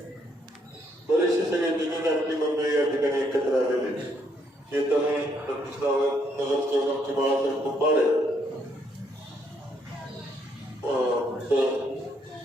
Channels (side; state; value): both; normal; correlation 0.72